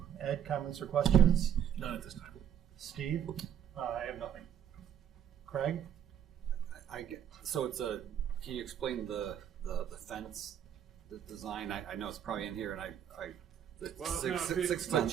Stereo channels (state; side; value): quieter; left; 9.5 dB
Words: Ed, comments or questions? None at this time. Steve? I have nothing. Craig? So it's a. Can you explain the fence, the design? I know it's probably in here, and the Well, six no, foot